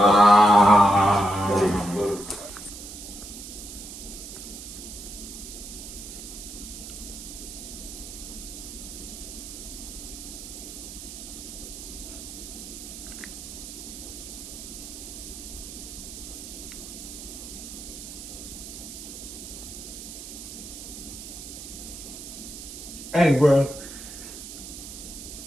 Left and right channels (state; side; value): noise; right; hiss, 11 dB below the sound